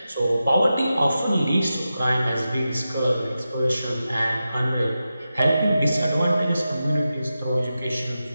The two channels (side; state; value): both; inverted; correlation -0.91